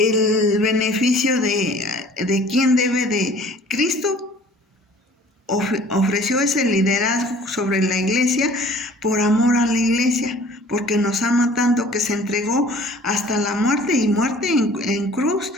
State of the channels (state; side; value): normal; both; correlation 0.50